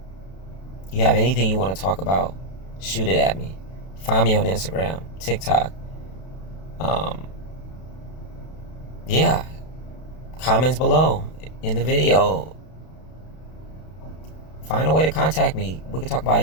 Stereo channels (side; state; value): right; late; 32 ms